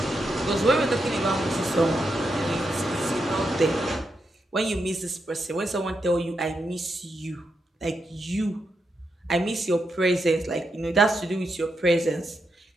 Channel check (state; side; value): normal; both; correlation 0.84